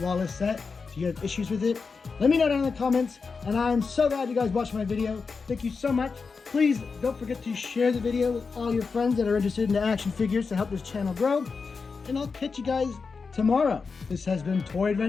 set? Do you have issues with it? Let me know down in the comments, and I'm so glad you guys watched my video. Thank you so much. Please don't forget to share the video with all your friends that are interested in the action figures to help this channel grow, and I'll catch you guys tomorrow. This has been Toy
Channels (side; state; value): right; quieter; 4.9 dB